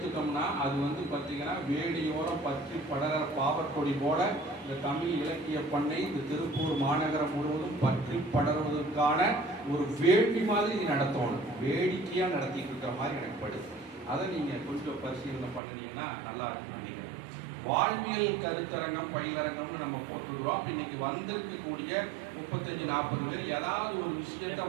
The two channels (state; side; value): drops out; left; at 15.6 s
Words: அது வந்து பார்த்தீங்கன்னா வேடியோரம் பற்றி படர பாவற்கொடி போல இந்த தமிழ் இலக்கிய பண்ணை இந்த திருப்பூர் மாநகரம் முழுவதும் பற்றி படர்வதற்கான ஒரு வேள்வி மாதிரி நடத்தணும். வேடிக்கையாக நடத்திட்டு இருக்கிற மாதிரி எனக்கு படுது. அதை நீங்கள் கொஞ்சம் பரிசீலனை பண்ணினீங்கன்னா நல்லா இருக்கும் நினைக்கிறேன். வாழ்வியல் கருத்தரங்கம் பயிலரங்கம்னு நம்ம போட்டுருவோம். அப்போ இன்னைக்கு வந்திருக்கக்கூடிய 35-40 பேர் ஏதாவது ஒரு விஷயத்த